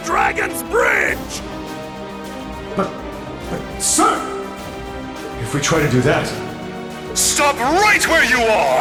Dragon's Bridge! But, sir! If we try to do that... Stop right where you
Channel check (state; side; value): identical; both; correlation 1.00